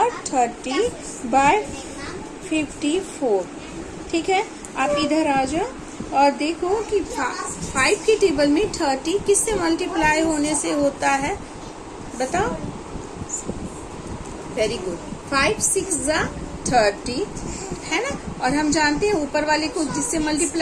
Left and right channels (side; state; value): both; identical; correlation 1.00